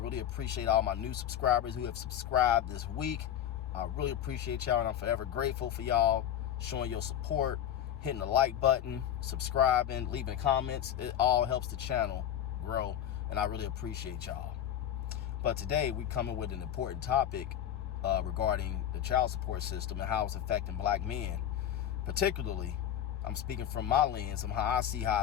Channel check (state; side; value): quieter; right; 10.5 dB